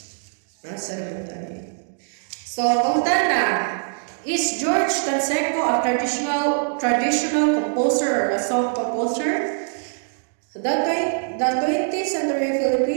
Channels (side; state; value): left; silent; digital silence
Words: Nasa naman tayo. So, punta na. Is George Canseco a traditional composer or a song composer? The 20th century